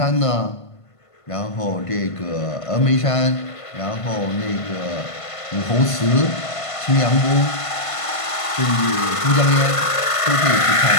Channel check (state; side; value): late; right; 1.5 ms